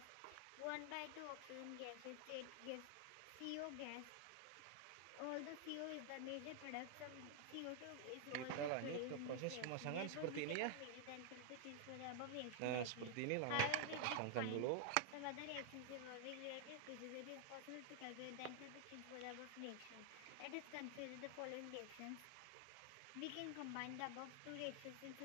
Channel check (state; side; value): different; both; correlation 0.00